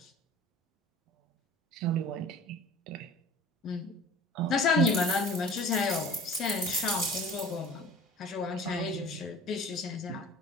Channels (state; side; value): normal; both; correlation 0.44